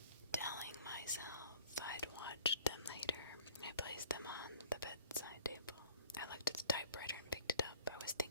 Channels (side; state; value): both; inverted; correlation -0.49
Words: Telling myself I'd watch them later, I placed them on the bedside table. I looked at the typewriter and picked it up. I was